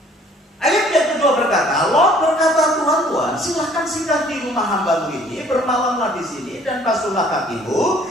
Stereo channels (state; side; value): normal; both; correlation 0.57